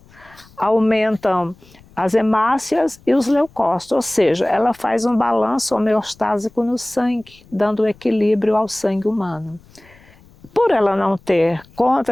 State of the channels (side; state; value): left; noise; rumble, 27 dB below the sound